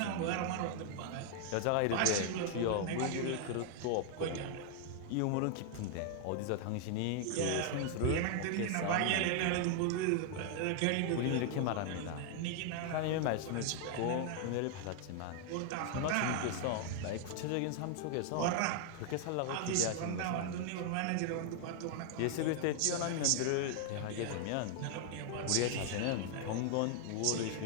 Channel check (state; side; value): different; both; correlation 0.00